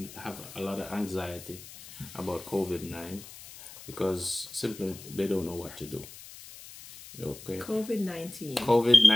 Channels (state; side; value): noise; left; hiss, 16 dB below the sound